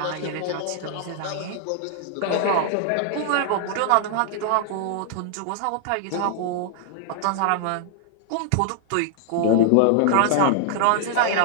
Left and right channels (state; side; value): different; both; correlation 0.00